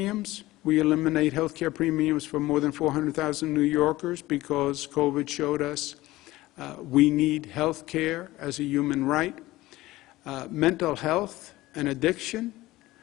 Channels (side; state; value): right; quieter; 17.9 dB